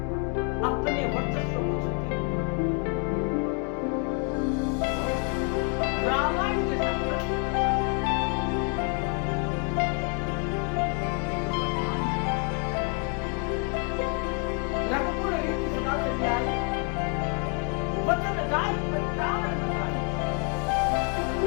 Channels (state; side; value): quieter; right; 38.0 dB